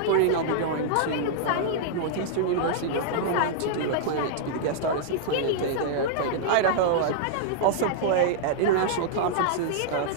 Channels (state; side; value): different; both; correlation -0.01